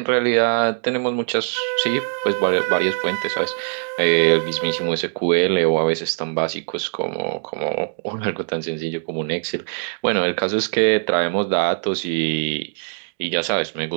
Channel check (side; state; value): left; silent; digital silence